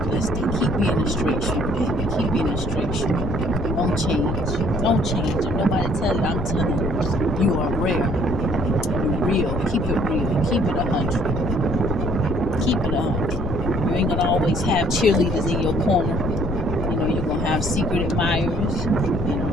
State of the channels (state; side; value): noise; left; rumble, 4 dB below the sound